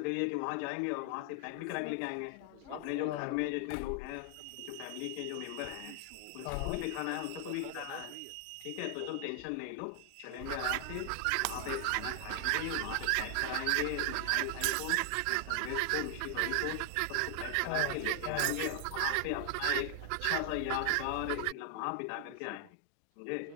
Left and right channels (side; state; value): both; different; correlation 0.00